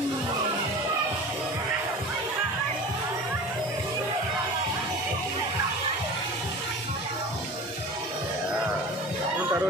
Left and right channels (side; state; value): both; normal; correlation 0.36